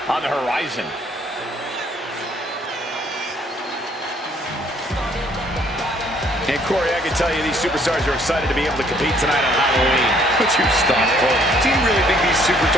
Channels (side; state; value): both; normal; correlation 0.63